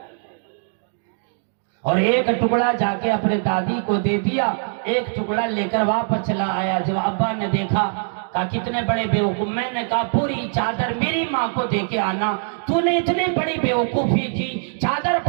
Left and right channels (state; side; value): silent; left; digital silence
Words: اور ایک ٹکڑا جا کے اپنے دادی کو دے دیا، ایک ٹکڑا لے کر واپس چلا آیا۔ جب ابا نے دیکھا کہا کتنے بڑے بیوقوف، میں نے کہا پوری چادر میری ماں کو دے کے آنا، تو نے اتنی بڑی بیوقوفی کی، چادر